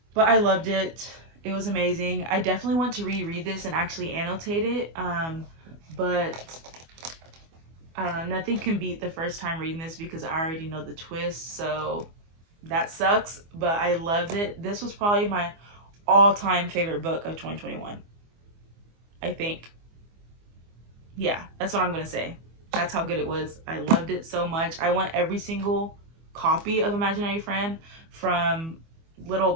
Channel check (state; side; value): late; left; 24 ms